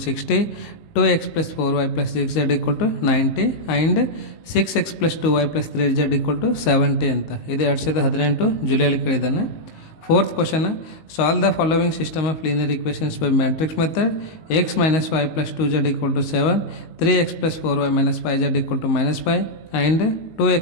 60, 2x plus 4y plus 6z equal to 90 and 6x plus 2y plus 3z equal to 70 ಅಂತ. ಇದು 2018 ಜುಲೈಲಿ ಕೇಳಿದ್ದಾನೆ. Fourth question solve the following system of linear equations by matrix method. X minus Y plus 2z equal to 7, 3x plus 4y minus 5z equal to -5 and 2x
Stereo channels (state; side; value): late; right; 19 ms